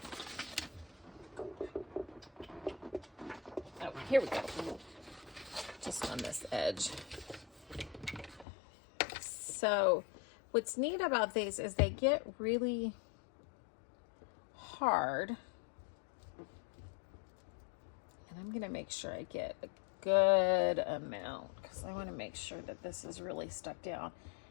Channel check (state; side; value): drops out; right; at 8.5 s